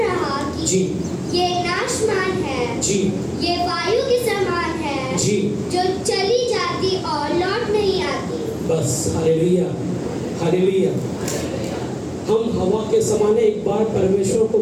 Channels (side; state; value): both; identical; correlation 1.00